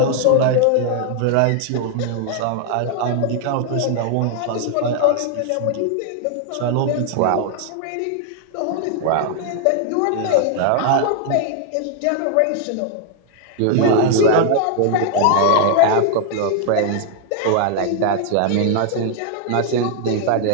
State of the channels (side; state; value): both; different; correlation 0.00